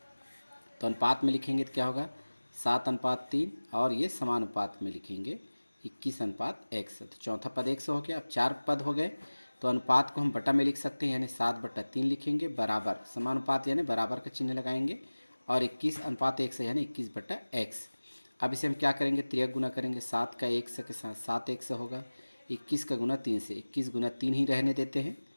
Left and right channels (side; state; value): both; inverted; correlation -1.00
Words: तो अनुपात में लिखेंगे तो क्या होगा 7:3, और ये समानुपात में लिखेंगे 21:x। तो चौथा पद x हो गया। अब 4 पद हो गए, तो अनुपात को हम बटा में लिख सकते हैं, यानी 7/3 लिखेंगे, बराबर समानुपात यानी बराबर का चिन्ह लगाएंगे, और 21:x है, यानी 21/x। अब इसे हम क्या करेंगे, त्रियक गुना करेंगे। 7 का x के साथ 7x होगा, 21 का गुना 3 से 21 गुना 3 ही रहने देते हैं,